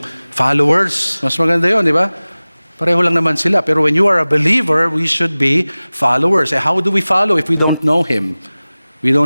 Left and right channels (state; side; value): inverted; both; correlation -0.98